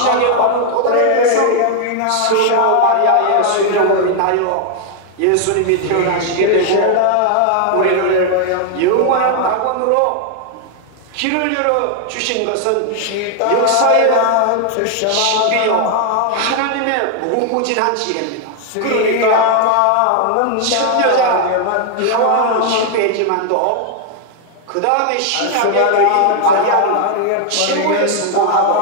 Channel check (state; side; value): different; both; correlation 0.00